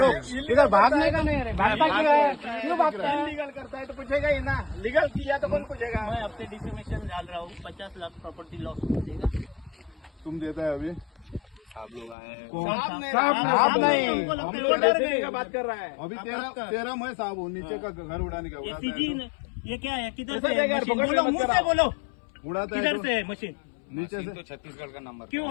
इधर भागने का नहीं, भागता क्यों है? क्यों भागता है? इलीगल करता है तो पूछेगा ही ना, लीगल किया तो कौन पूछेगा? मैं अपने डिफेमेशन डाल रहा हूँ, 50 लाख प्रॉपर्टी लॉस देगा। तुम देता है अभी आप लोग आए हैं। साहब नहीं, का बात कर रहा है। अभी तेरा मैं साहब हूँ, नीचे का घर उड़ाने का ये उड़ाता सीधी है न- ये क्या है? किधर ऐसा से देगा, है मशीन? पकड़ के बोलो, मत मुंह से कराओ। बोलो, तो उड़ाता है किधर तो से है मशीन? नीचे से तो छत्तीसगढ़ का नंबर क्यों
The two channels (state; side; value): drops out; right; at 12.2 s